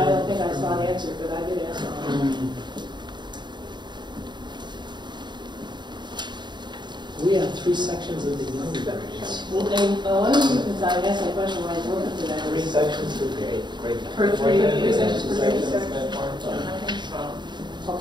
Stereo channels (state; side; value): late; left; 0.22 ms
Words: don't think I saw an answer, but I did ask. We have 3 sections of the younger grades. Well, and one of the reasons I asked that question when I was looking for that 3 is sections per grade. per 3 sections per grade.